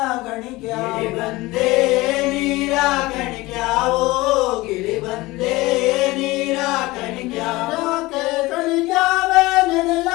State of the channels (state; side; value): quieter; right; 20.4 dB